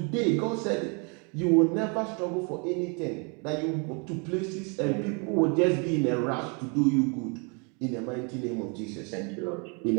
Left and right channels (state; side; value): quieter; left; 34.6 dB